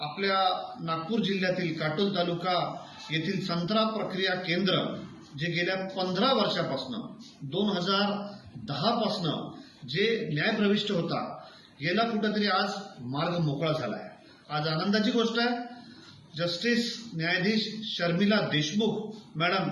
नागपूर जिल्ह्यातील काटोल तालुका येथील संत्रा प्रक्रिया केंद्र जे गेल्या 15 वर्षापासून 2010 पासून जे न्यायप्रविष्ट होता, गेला कुठेतरी आज मार्ग मोकळा झाला आहे। आज आनंदाची गोष्ट आहे, जस्टिस न्यायाधीश शर्मिला देशमुख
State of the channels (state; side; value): identical; both; correlation 1.00